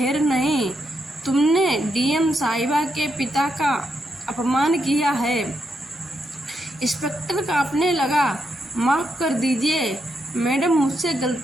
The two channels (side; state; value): both; normal; correlation 0.81